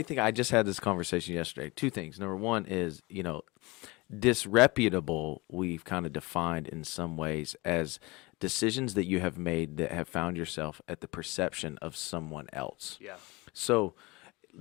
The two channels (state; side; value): quieter; right; 23.9 dB